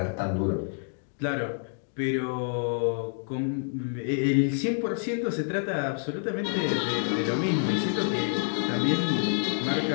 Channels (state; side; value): silent; right; 56 dB below the other